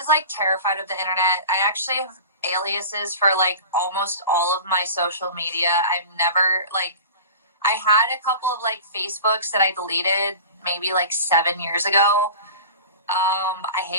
like terrified of the internet. I actually have aliases for like almost all of my social media. I've never like, I had a couple of like Facebooks that I deleted maybe like 7 years ago. I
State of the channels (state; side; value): inverted; both; correlation -0.36